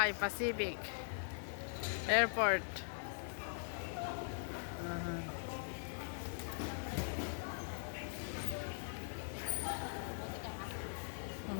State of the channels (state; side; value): silent; right; digital silence